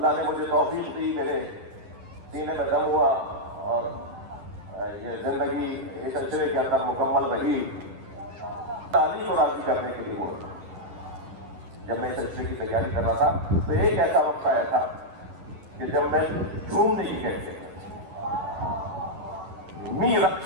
نے مجھے توفیق دی، میرے سینے میں دم ہوا اور یہ زندگی اس سلسلے کے اندر مکمل رہی. تعلیم کو راضی کرنے کے لیے بولتا. جب میں اس سلسلے کی تیاری کر رہا تھا تو ایک ایسا وقت آیا تھا کہ جب میں جھومنے کی کہتے ہیں می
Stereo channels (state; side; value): late; left; 10 ms